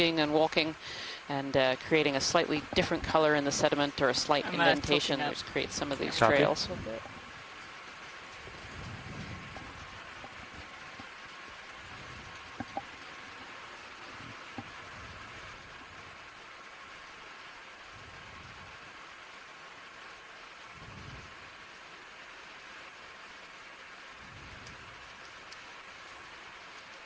and walking, and creating a slightly different color in the sediment or a slight indentation, which creates some of these trails.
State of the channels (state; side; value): identical; both; correlation 1.00